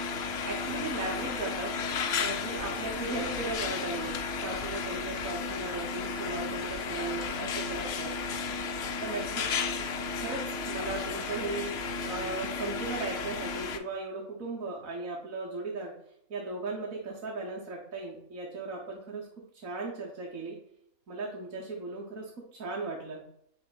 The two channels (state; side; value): late; left; 3.0 ms